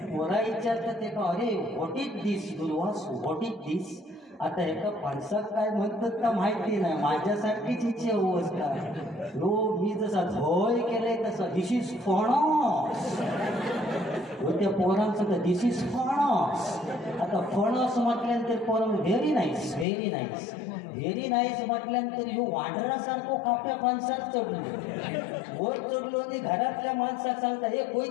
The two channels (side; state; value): right; drops out; at 19.9 s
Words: विचारतात ते का अरे what is this Durvas what is this आता एका फणसात काय म्हणतात का माहिती नाही माझ्यासारखीच इच्छा होस का हो मी जसा झोय केलंय तसं दिस इज फणस त्या पोरांचं तर दिस इज फणस आता फणस म्हटल्यानंतर पोरं very nice very nice very nice म्हटल्यानंतर ह्यो वांढरासारखो काप्या फणसात चढलो वर चढलो आणि घरातल्या माणसाक सांगता हे